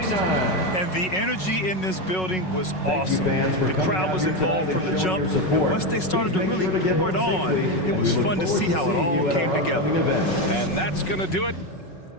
And the energy in this building was awesome. fans, for The coming crowd out was here involved tonight from and the showing jump. your And support. once they started to Please make really sure to get pour it home on, safely, it and was we look fun to forward see how it seeing all you at came our together. upcoming event. And that's going to do it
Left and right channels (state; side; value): late; right; 5.4 ms